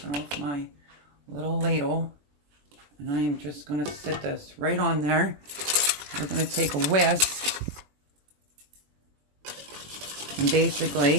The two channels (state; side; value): late; left; 21 ms